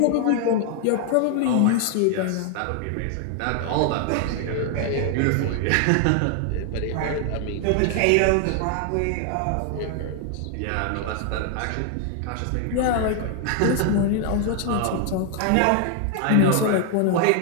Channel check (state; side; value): different; both; correlation 0.00